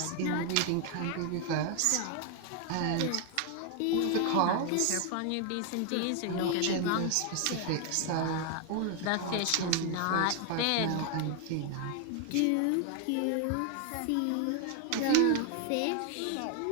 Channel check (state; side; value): different; both; correlation 0.00